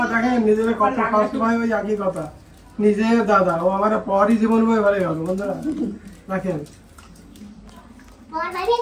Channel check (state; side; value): identical; both; correlation 1.00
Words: দেখেন নিজের কথা খাওয়ার সময় ওই একই কথা, নিজের দাদা ও আমার পরই জীবন বয়ে ভরে গেল। বন্ধুরা দেখেন, পর বানিয়ে